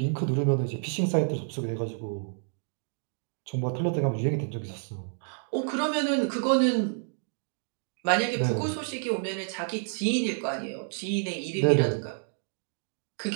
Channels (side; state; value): left; silent; 58 dB below the other